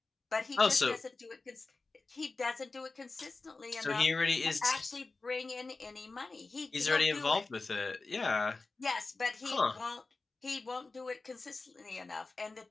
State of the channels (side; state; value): right; quieter; 3.7 dB